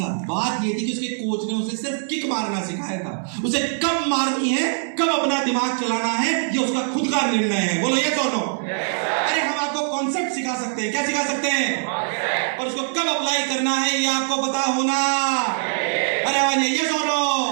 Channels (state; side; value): silent; left; 64 dB below the other